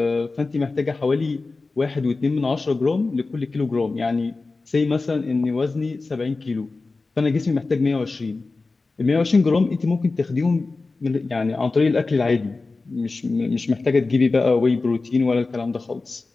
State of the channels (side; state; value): right; quieter; 3.7 dB